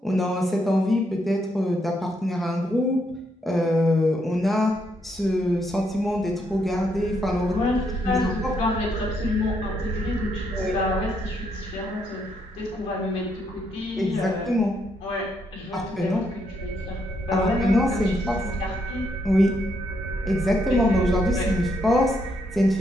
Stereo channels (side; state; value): both; normal; correlation 0.76